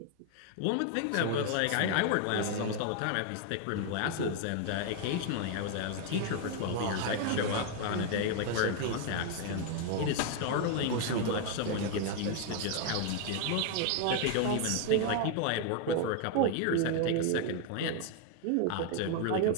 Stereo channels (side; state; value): both; different; correlation 0.01